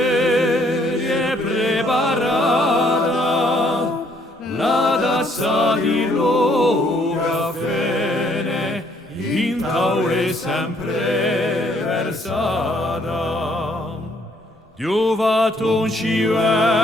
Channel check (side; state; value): both; normal; correlation 0.66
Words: è preparata, la tazza di lo caffè in tavola è sempre versata. Dio fatto ci